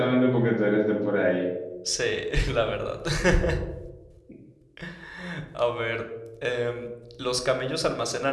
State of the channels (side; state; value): both; identical; correlation 1.00